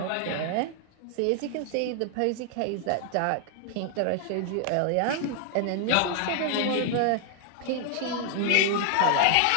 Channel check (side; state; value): both; different; correlation 0.00